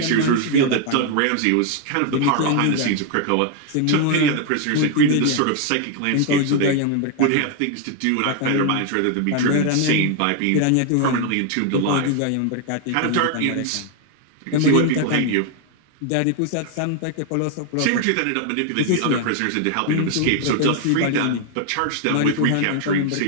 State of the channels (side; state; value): both; different; correlation 0.00